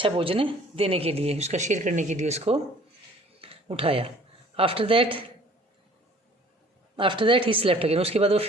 भोजन देने के लिए, उसका शेयर करने के लिए उसको उठाया. After that he slept again, उसके बाद वो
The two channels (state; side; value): normal; both; correlation 0.53